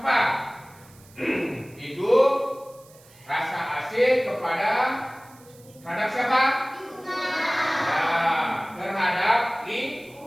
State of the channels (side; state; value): right; noise; hiss, 26 dB below the sound